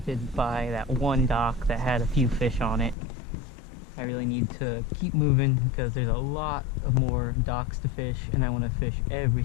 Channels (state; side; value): drops out; right; at 3.0 s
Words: by that one dock that had a few fish on it. I really need to keep moving because there's a lot of more docks to fish and I want to fish every